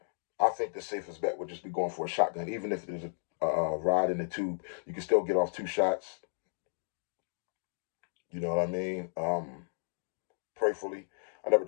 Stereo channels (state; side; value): silent; right; digital silence